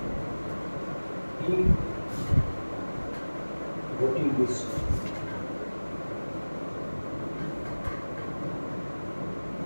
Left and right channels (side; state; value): both; inverted; correlation -1.00